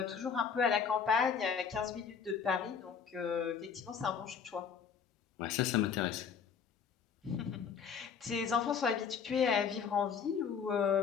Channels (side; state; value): right; quieter; 6.7 dB